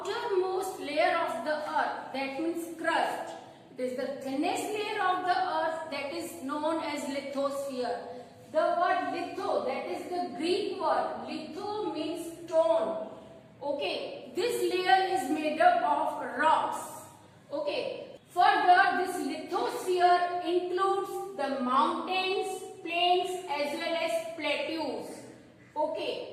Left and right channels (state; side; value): identical; both; correlation 1.00